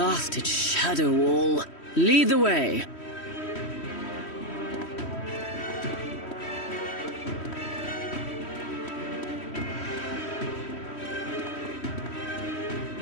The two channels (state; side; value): late; right; 3.1 ms